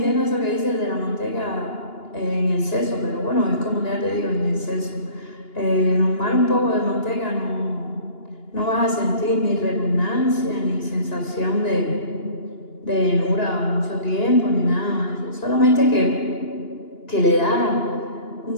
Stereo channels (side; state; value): right; late; 2.8 ms